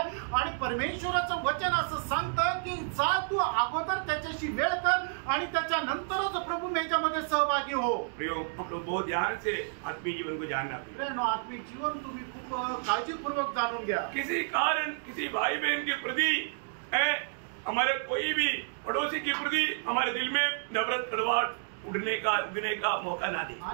आणि परमेश्वराचं वचन असं सांगतं की जा तू अगोदर त्याच्याशी वेळ कर आणि त्याच्यानंतरच प्रभुमेजामध्ये सहभागी हो। प्रियो, हम लोग बहुत ध्यान से आत्मीय जीवन को जानना पड़ेगा। प्रेरणा आत्मिक जीवन तुम्ही खूप काळजीपूर्वक जाणून घ्या। किसी कारण किसी भाई बहन के प्रति हमारे कोई भी पड़ोसी के प्रति हमारे दिल में नफरत कड़वाहट उगने का मौका ना दे।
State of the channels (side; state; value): left; silent; digital silence